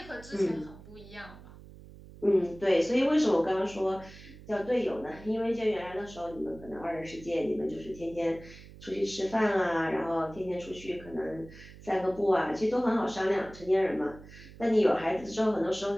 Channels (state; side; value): noise; right; hum, 18 dB below the sound